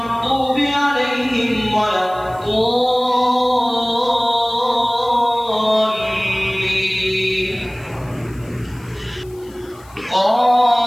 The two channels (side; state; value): left; noise; hiss, 27 dB below the sound